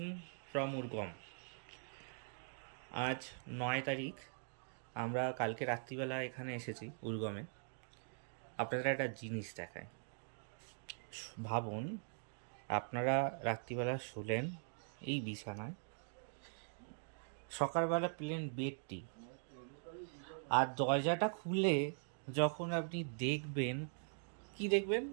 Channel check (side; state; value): left; silent; digital silence